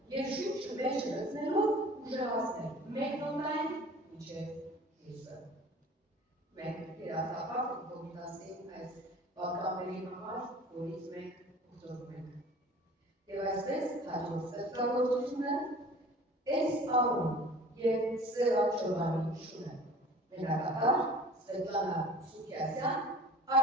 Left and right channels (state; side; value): normal; both; correlation 0.45